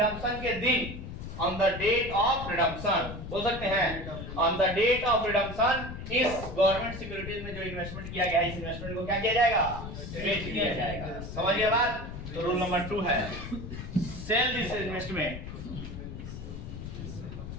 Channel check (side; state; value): left; noise; rumble, 9 dB below the sound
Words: के दिन, on the date of redemption, बोल सकते हैं on the date of redemption, इस गवर्नमेंट सिक्योरिटीज में जो इन्वेस्टमेंट किया गया है, इस इन्वेस्टमेंट को क्या किया जाएगा? बेच दिया जाएगा। समझिए बात? तो रूल नंबर 2 है sell this investment,